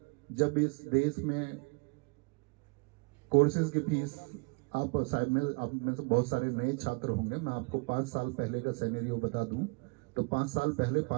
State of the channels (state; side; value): quieter; left; 32.9 dB